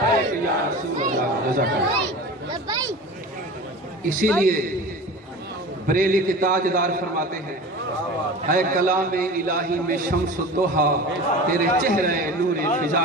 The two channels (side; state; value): both; normal; correlation 0.35